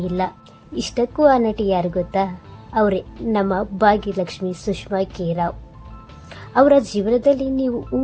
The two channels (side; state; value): both; identical; correlation 1.00